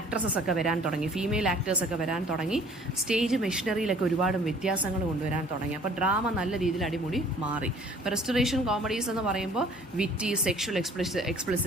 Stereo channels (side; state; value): both; normal; correlation 0.54